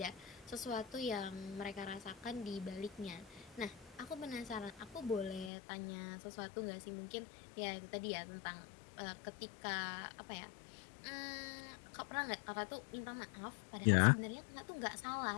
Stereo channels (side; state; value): right; drops out; at 5.5 s